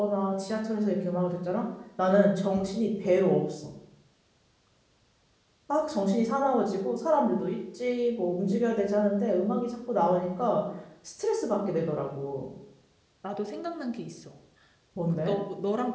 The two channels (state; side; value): identical; both; correlation 1.00